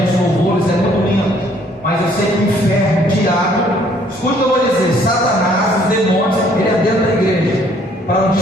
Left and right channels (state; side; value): normal; both; correlation 0.62